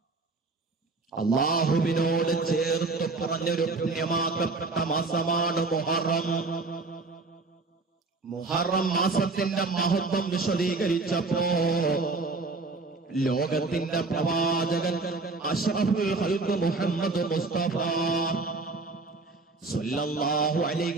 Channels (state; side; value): quieter; left; 3.7 dB